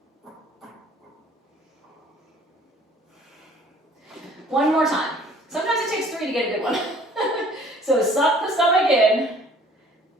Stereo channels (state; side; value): normal; both; correlation 0.54